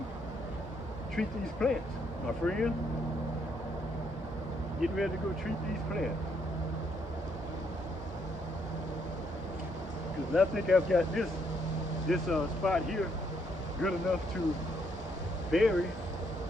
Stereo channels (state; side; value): normal; both; correlation 0.73